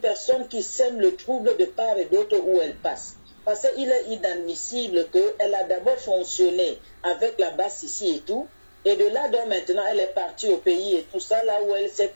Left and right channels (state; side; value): inverted; both; correlation -1.00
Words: qui sème le trouble de part et d'autre où elle passe. Parce qu'il est inadmissible qu'elle a d'abord fonctionné avec la basse ici et tout. Et de là, donc maintenant, elle est partie au pays et tout ça, là où elle s'est